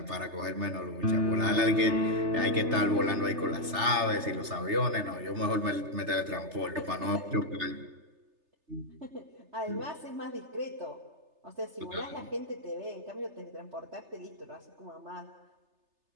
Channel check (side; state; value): left; late; 3.3 ms